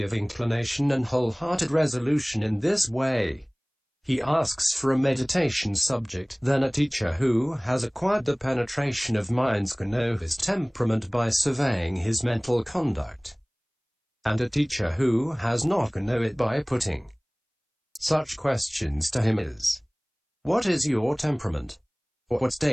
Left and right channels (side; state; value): both; identical; correlation 1.00